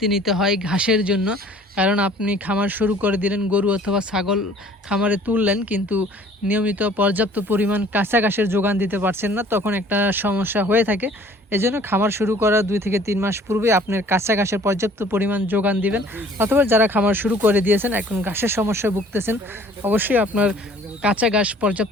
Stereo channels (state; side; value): normal; both; correlation 0.53